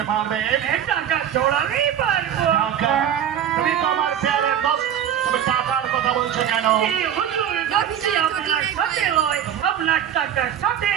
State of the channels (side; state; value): left; quieter; 9.7 dB